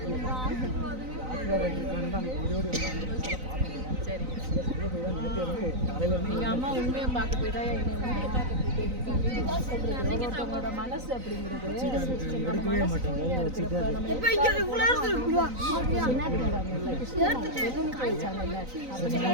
சரி. எங்க அம்மா உண்மையை பார்க்க போய் தான் என்னை உண்மையை பார்க்க ஒருத்தவங்களோட மனசு அப்படிங்கிறது எடுக்கவே மாட்டாங்க.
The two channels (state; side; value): late; left; 3.9 ms